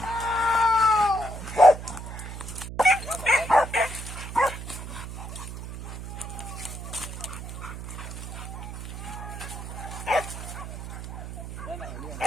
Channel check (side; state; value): right; noise; hum, 9 dB below the sound